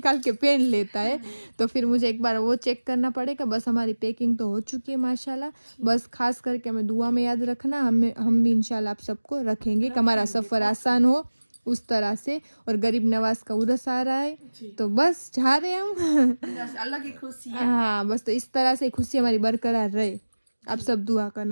के पहन लेता है। तो फिर मुझे एक बार वो चेक करना पड़ेगा। बस हमारी पैकिंग तो हो चुकी है माशाल्लाह। बस खास करके हमें दुआ में याद रखना, हम भी इंशाल्लाह आप सबको रखेंगे कि हमारा सफ़र आसान हो उस तरह से। और गरीब नवाज का उर्स आ रहा है, तो बस जा रहे हैं हम। बस अलग ही खुशी है। हाँ, बस तो इस तरह से खुशी हमारी बरकरार रहे, आप सब दुआ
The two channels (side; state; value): both; inverted; correlation -1.00